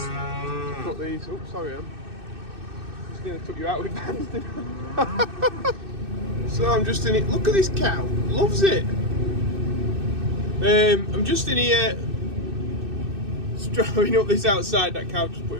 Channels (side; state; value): left; late; 2.6 ms